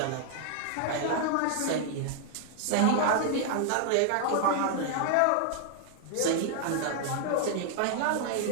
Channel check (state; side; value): different; both; correlation 0.00